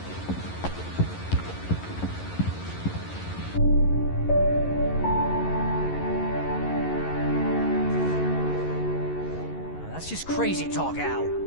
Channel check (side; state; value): right; late; 11 ms